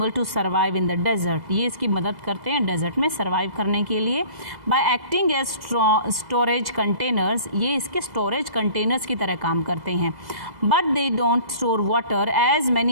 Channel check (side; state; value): left; late; 2.0 ms